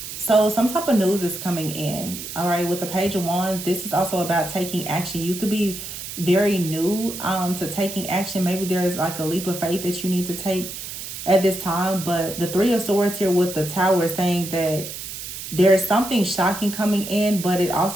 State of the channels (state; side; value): noise; right; hiss, 9 dB below the sound